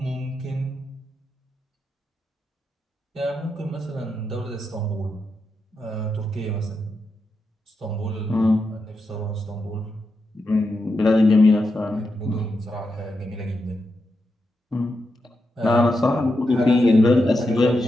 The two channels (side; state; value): both; normal; correlation 0.86